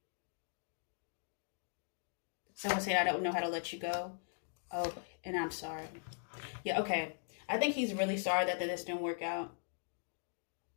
Someone said, I don't know how to let you go. Oh, and I'm sorry. Yeah, okay. I think he's really sorry that this didn't work out.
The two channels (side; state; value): right; silent; digital silence